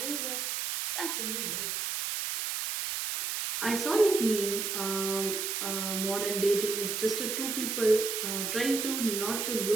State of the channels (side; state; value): right; noise; hiss, 2 dB below the sound